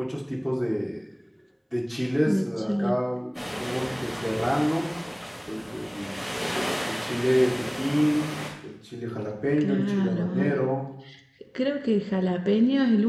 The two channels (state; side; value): identical; both; correlation 1.00